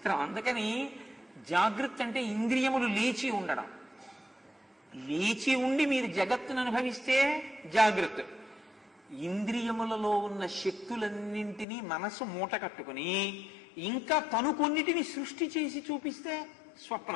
అందుకని జాగృతి అంటే ఇంద్రియములు లేచి ఉండడం. లేచి ఉండి మీరు జగత్తును అనుభవిస్తే జాగృతి. ఇంద్రియములలో ఉన్న శక్తులన్నింటినీ మనసు మూట కట్టుకుని ఇంకా తను కొన్నిటిని సృష్టి చేసి చూపిస్తే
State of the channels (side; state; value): right; drops out; at 11.7 s